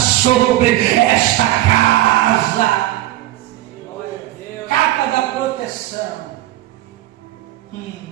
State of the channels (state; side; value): quieter; left; 15.5 dB